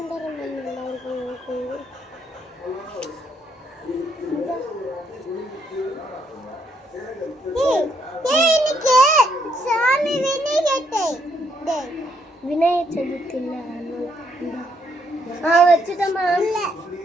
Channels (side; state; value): both; normal; correlation 0.73